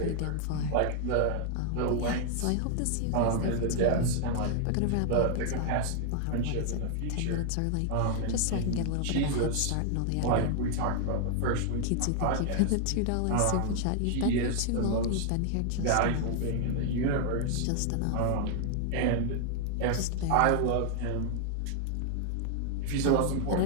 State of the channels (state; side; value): different; both; correlation 0.00